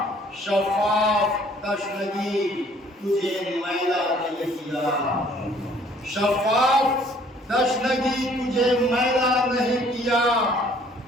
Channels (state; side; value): normal; both; correlation 0.59